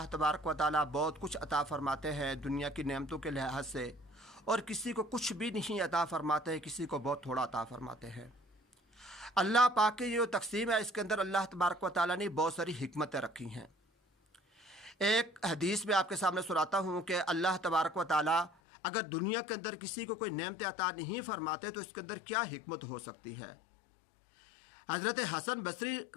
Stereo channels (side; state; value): right; drops out; at 18.5 s